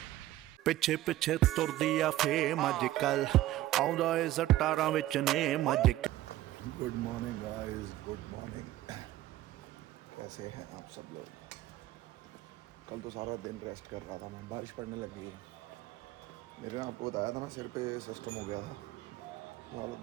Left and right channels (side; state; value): left; quieter; 15.0 dB